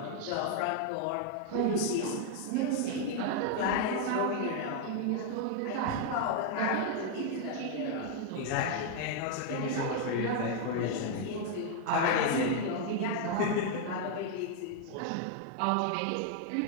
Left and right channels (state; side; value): different; both; correlation 0.00